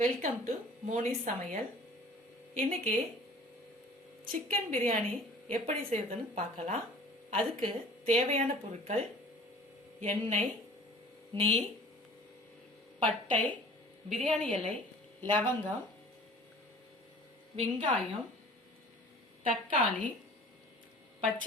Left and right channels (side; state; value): both; normal; correlation 0.47